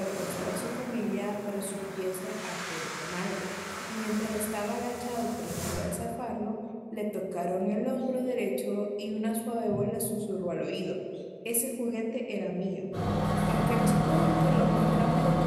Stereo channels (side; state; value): both; identical; correlation 1.00